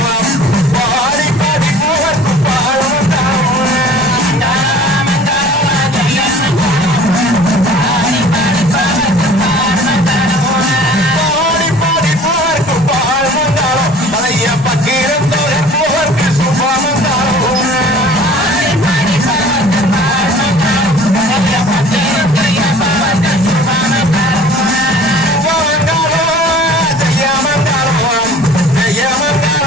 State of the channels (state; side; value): normal; both; correlation 0.47